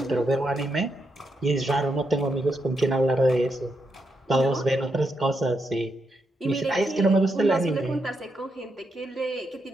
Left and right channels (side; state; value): both; normal; correlation 0.82